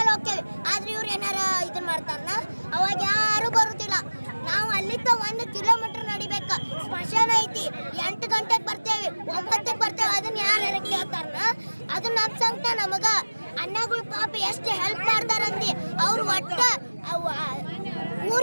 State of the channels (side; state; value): both; inverted; correlation -1.00